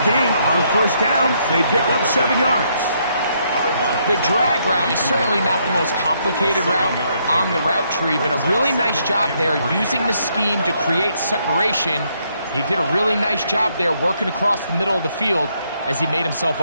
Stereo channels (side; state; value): both; inverted; correlation -0.73